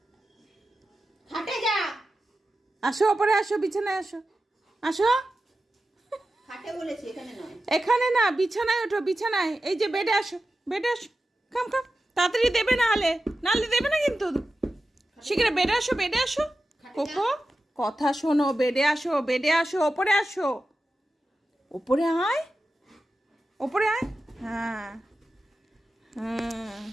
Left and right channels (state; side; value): normal; both; correlation 0.93